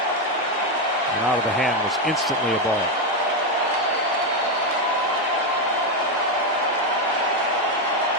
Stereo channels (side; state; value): both; normal; correlation 0.07